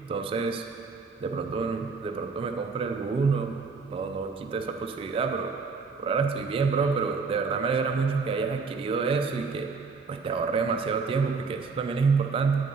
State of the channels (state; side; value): quieter; left; 4.7 dB